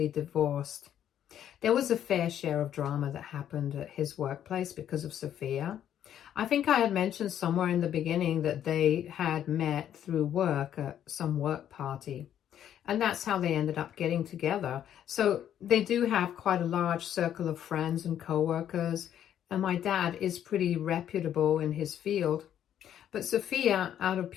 divorced. There was a fair share of drama that happened at his workplace because of Sophia. I think I had mentioned somewhere in the beginning that they had met through work at some work party. And that's how they ended up getting together. So they do have quite a large circle of friends and co-workers. And my dad is pretty reputable in his field. But Sophia, out of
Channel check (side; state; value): right; quieter; 10.3 dB